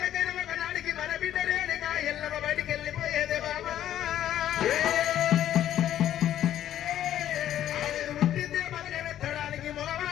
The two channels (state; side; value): quieter; right; 11.5 dB